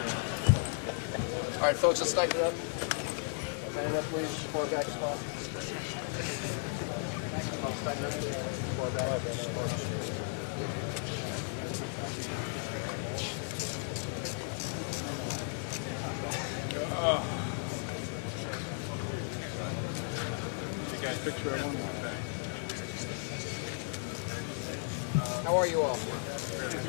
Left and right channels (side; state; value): right; silent; 55 dB below the other